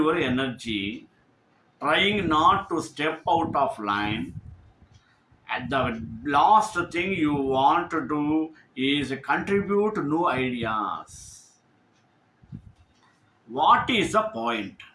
energy trying not to step out of line, and the last thing you want to do is contribute new ideas. What is the point?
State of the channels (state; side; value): identical; both; correlation 1.00